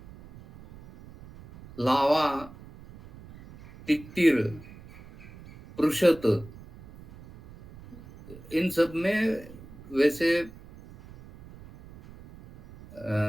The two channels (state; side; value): noise; right; rumble, 19 dB below the sound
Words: लावा, तित्तिर, पृषत, इन सब में वैसे